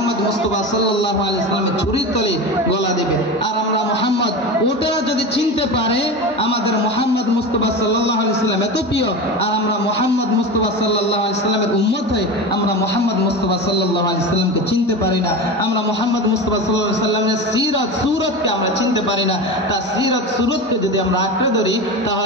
মুস্তাফা সাল্লাল্লাহু আলাইহি সাল্লামের ছুরির তলে গলা দেবে। আর আমরা মুহাম্মদ, ওটারা যদি চিনতে পারে আমাদের মুহাম্মদ মুস্তাফা সাল্লাল্লাহু আলাইহি সাল্লাম এত প্রিয়, আর আমরা মুহাম্মদ মুস্তাফা সাল্লাল্লাহু আলাইহি সাল্লামের উম্মত হই, আমরা মুহাম্মদ মুস্তাফা সাল্লাল্লাহু আলাইহি সাল্লামকে চিনতে পারি না। আমরা মুহাম্মদ মুস্তাফা সাল্লাল্লাহু আলাইহি সাল্লামের সিরাত সুরতকে আমরা চিনতে পারি না। তার সিরাত সুরতকে যদি আমরা আঁকড়ে ধরি,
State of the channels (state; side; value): normal; both; correlation 0.26